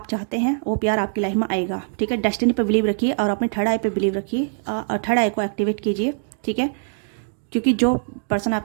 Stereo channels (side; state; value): left; silent; digital silence